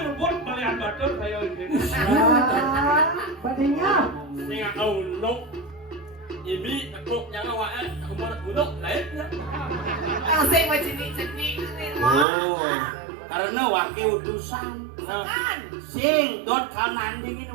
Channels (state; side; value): drops out; left; at 12.2 s